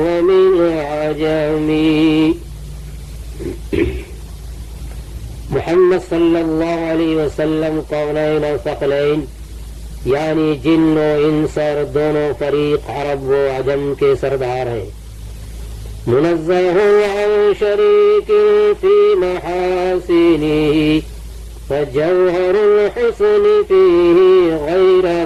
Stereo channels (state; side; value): identical; both; correlation 1.00